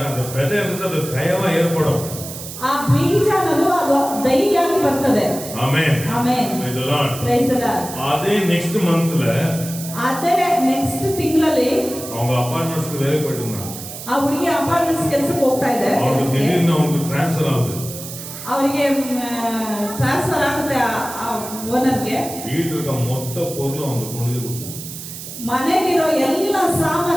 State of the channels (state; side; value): noise; right; hiss, 11 dB below the sound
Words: அந்த விதை அது தயவா ஏற்படும். ಆ ಬೀಜ ಅನ್ನೋದು ಅದು ದೈಯಾಗಿ ಬರ್ತದೆ. Amen amen. Praise the lord. Praise the lord. அதே நெக்ஸ்ட் மந்த்ல, ಅದೇ ನೆಕ್ಸ್ಟ್ ತಿಂಗಳಲ್ಲಿ அவங்க அபார்ட்மெண்ட்ஸ்க்கு வேலை போயிட்டு இருந்தாங்க. ಆ ಹುಡುಗಿ ಅಪಾರ್ಟ್ಮೆಂಟ್ಸ್ ಕೆಲಸಕ್ಕೆ ಹೋಗ್ತಾ ಇದೆ. அவங்களுக்கு திடீர்னு அவங்களுக்கு ட்ரான்ஸ்ஃபர் ஆகுது. ಅವರಿಗೆ ಟ್ರಾನ್ಸ್ಫರ್ ಆಗುತ್ತೆ ಆ ಓನರ್ಗೆ. வீட்டுல இருக்க மொத்த பொருளும் அவங்க பொண்ணுಗೆ கொடுத்தாங்க. ಮನೆಗಿರೋ ಎಲ್ಲ